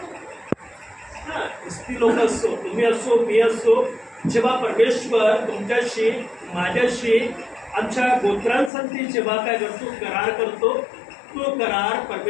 ती लोक असो, तुम्ही असो, मी असो, जेव्हा परमेश्वर तुमच्याशी माझ्याशी आमच्या गोत्रांसाठी जेव्हा काय करतो करार करतो, तो करार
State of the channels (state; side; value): drops out; right; at 8.7 s